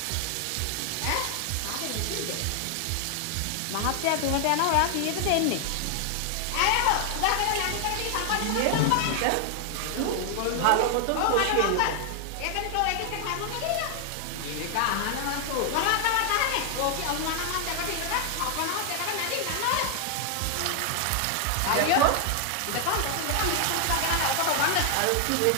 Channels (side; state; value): both; different; correlation 0.00